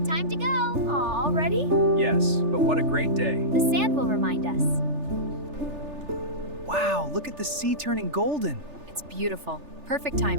Time to go. Aw, ready? Yes, but what a great day. The sand will remind us. Wow, look at the sea turning golden. It's beautiful. Perfect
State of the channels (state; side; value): late; left; 3.4 ms